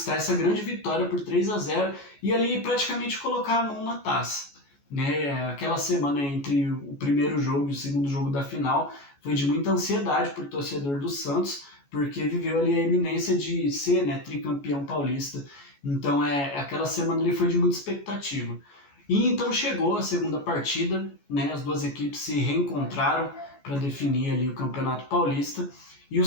essa grande vitória por 3-0 e ali praticamente colocar a mão na taça. Né? Aquela semana entre o primeiro jogo e o segundo jogo da final foi de muita ansiedade para o torcedor do Santos, porque viveu ali a iminência de ser, né, tricampeão paulista. Então aquela semana ali foi de muita expectativa. E então chegou a segunda partida, né, as 2 equipes se reencontraram para definir ali o Campeonato Paulista e o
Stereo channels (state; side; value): late; right; 14 ms